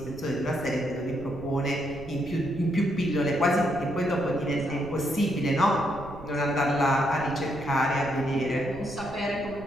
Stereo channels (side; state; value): right; noise; rumble, 15 dB below the sound